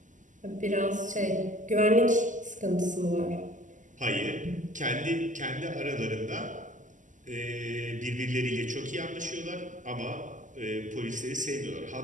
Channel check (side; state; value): left; late; 0.37 ms